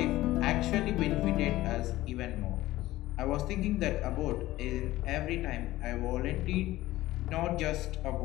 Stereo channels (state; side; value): quieter; right; 16.5 dB